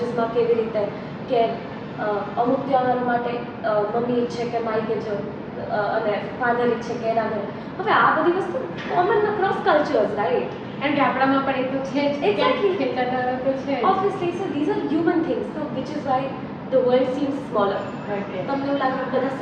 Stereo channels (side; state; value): both; identical; correlation 1.00